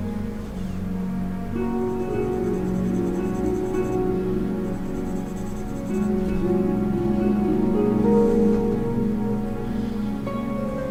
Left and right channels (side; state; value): both; identical; correlation 1.00